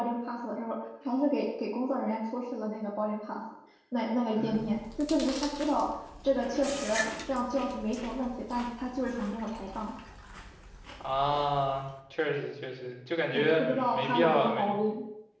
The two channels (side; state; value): both; identical; correlation 1.00